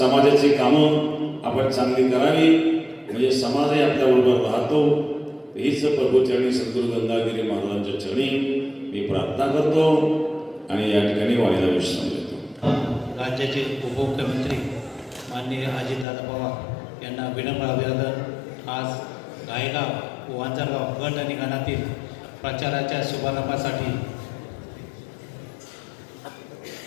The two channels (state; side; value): drops out; right; at 16.1 s